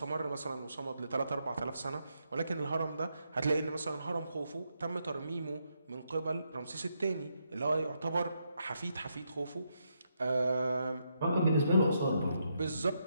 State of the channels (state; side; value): inverted; both; correlation -0.80